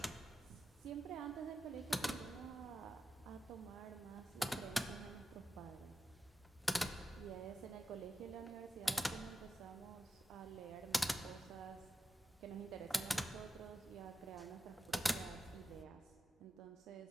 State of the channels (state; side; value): normal; both; correlation 0.89